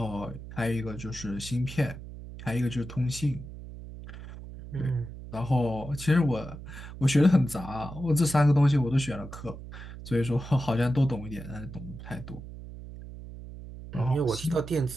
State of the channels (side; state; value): right; noise; hum, 12 dB below the sound